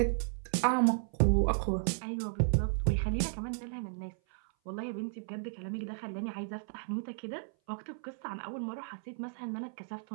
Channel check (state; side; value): silent; left; 55 dB below the other